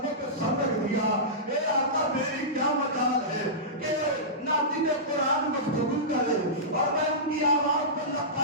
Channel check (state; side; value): normal; both; correlation -0.17